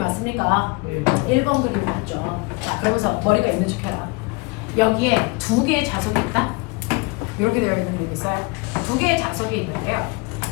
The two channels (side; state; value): right; quieter; 26.8 dB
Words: 왔습니까? 1번 그림이 왔죠. 자, 그러면서 머리가 있는 척 해라. 여기에 두 개의 자석이 있다? 이렇게 되어 있는 그림이 있어요. 두 개의 자석이 있는데요.